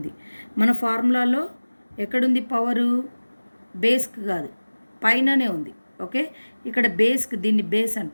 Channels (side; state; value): both; inverted; correlation -1.00